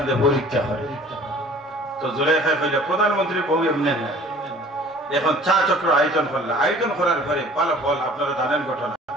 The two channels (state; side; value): normal; both; correlation 0.49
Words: পরীক্ষা হয় তো জুলেখায় কইলা প্রধানমন্ত্রী বউ এমনি না এখন চা চক্র আয়োজন করলে আয়োজন করার পরে ফলাফল আপনারা জানেন ঘটনা